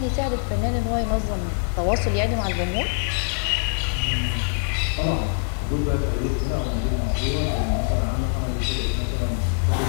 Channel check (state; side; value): silent; right; digital silence